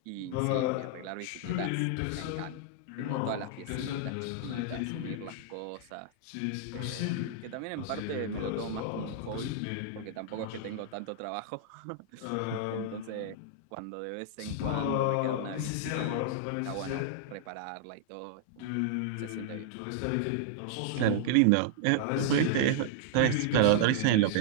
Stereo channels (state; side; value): different; both; correlation -0.01